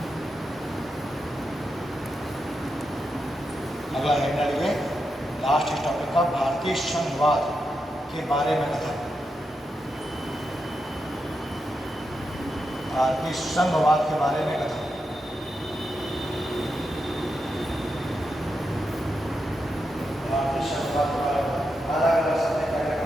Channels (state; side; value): normal; both; correlation 0.86